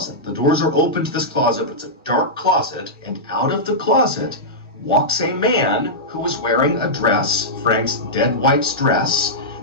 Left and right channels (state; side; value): normal; both; correlation -0.11